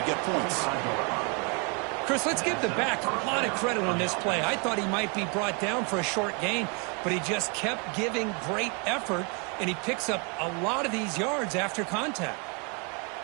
get points. Chris, let's give the back a lot of credit on this play. I thought he might be brought down for a short gain, but he just kept giving great effort, and he picks up a lot of these yards after contact.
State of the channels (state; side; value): quieter; left; 33.9 dB